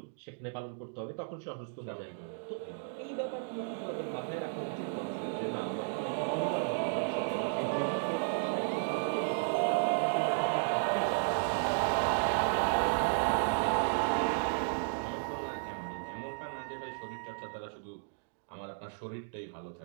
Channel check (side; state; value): left; silent; digital silence